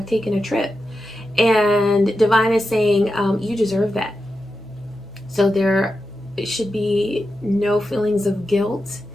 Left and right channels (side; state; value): left; noise; hum, 27 dB below the sound